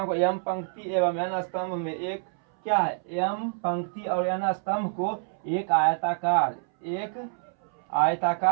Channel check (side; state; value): left; silent; 60 dB below the other